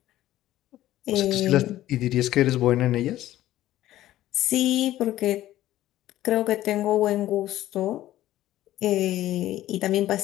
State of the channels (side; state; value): right; quieter; 14.2 dB